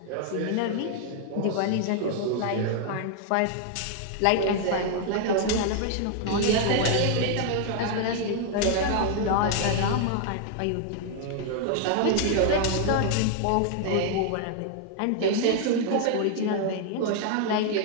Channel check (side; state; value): both; different; correlation 0.00